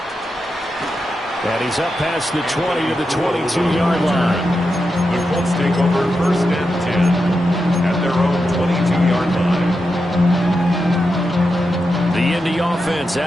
And he's up past the 20 to the 22-yard line. The Colts take over 1st and 10 at their own 22-yard line. The Indy offense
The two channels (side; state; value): both; normal; correlation 0.88